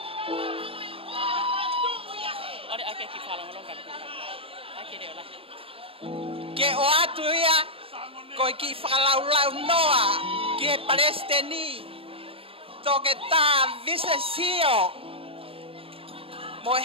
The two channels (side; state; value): left; late; 0.27 ms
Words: Ole ake ki whalonga longa. Ake reo la. Ke o atu ia ko e ki whakalaulau noa ki e Palestini. Toke tā visesio. Mo e